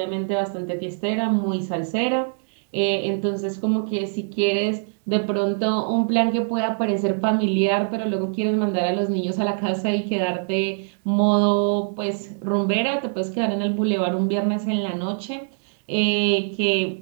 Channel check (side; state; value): left; silent; digital silence